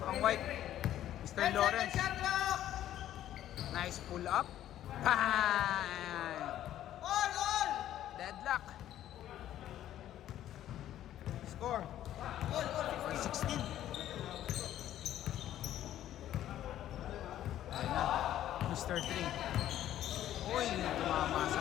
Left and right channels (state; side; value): quieter; right; 12.2 dB